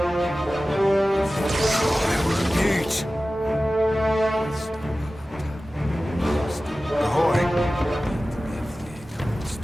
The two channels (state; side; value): normal; both; correlation 0.96